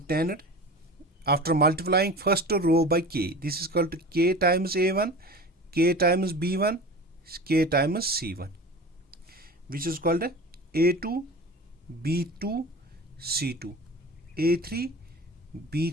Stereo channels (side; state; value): both; normal; correlation 0.34